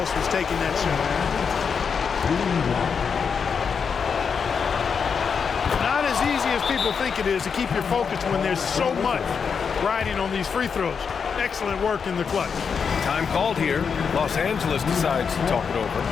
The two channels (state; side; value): quieter; right; 6.2 dB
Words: was taking that shot. Not as easy as people think it is to keep your focus when there's so much riding on these free throws. Excellent work in the clutch. Time called here. Los Angeles decides to talk it over.